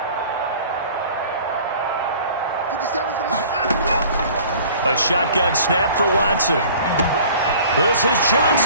57's the mic. A shotgun snap for Watson. This is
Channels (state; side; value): inverted; both; correlation -0.48